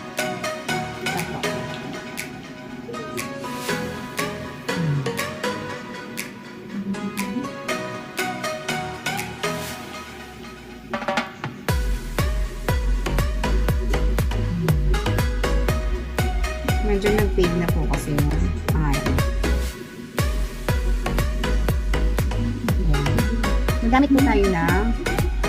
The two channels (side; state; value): both; identical; correlation 1.00